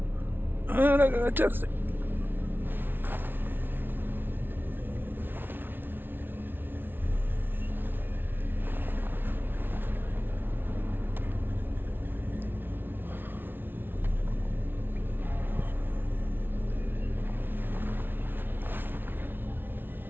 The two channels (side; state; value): left; late; 0.099 ms